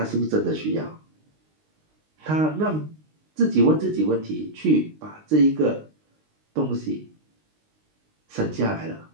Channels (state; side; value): late; left; 19 ms